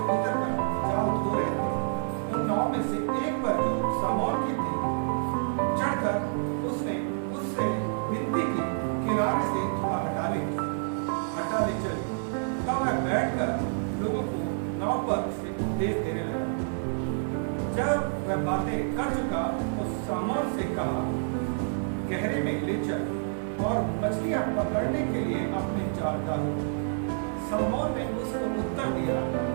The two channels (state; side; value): silent; left; 59 dB below the other